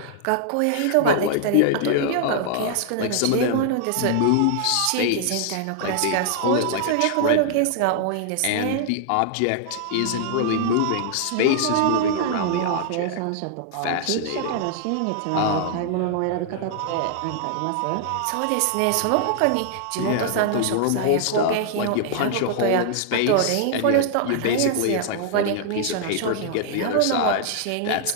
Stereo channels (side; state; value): both; different; correlation -0.01